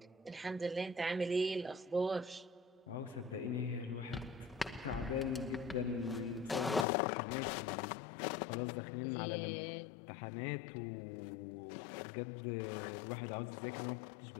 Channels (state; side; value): drops out; right; at 6.9 s